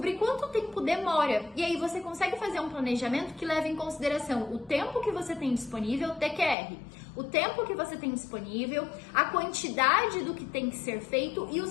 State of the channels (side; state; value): right; drops out; at 6.6 s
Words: quanto tempo demora. E aí você consegue fazer um planejamento que leva em consideração o tempo que você tem disponível, TQR, o tempo que você tem disponível, a quantidade do que tem que ser feito e o